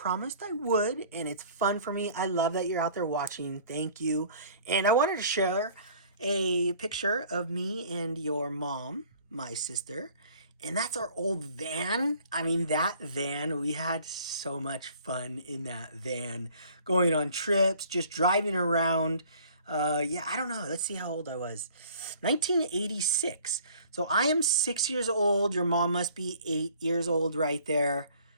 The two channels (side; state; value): both; inverted; correlation -0.52